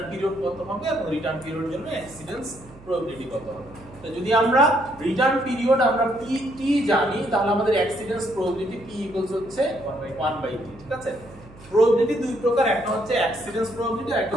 পিরিয়ড কত হবে এবং রিটার্ন পিরিয়ডের জন্য এক্সিডেন্স প্রবাবিলিটি কত হবে। তো যদি আমরা রিটার্ন পিরিয়ড আমরা টি জানি, তাহলে আমাদের এক্সিডেন্স প্রবাবিলিটি p হচ্ছে 1/t। ঠিক আছে? প্রবাবিলিটি দুই প্রকার, একটা হচ্ছে অ্যাক্সিডেন্স প্রবাবিলিটি আর একটা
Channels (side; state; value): right; noise; hum, 21 dB below the sound